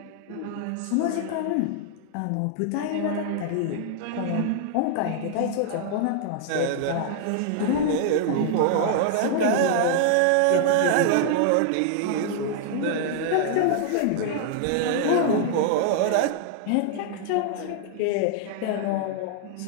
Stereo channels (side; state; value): both; different; correlation -0.01